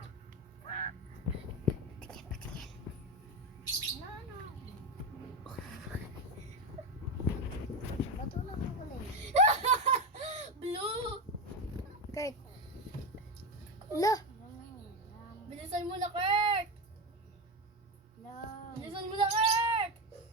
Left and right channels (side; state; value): both; normal; correlation 0.15